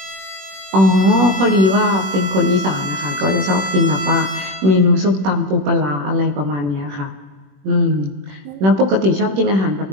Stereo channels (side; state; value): left; late; 21 ms